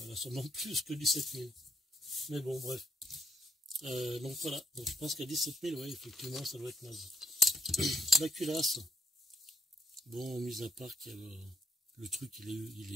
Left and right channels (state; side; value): normal; both; correlation 0.72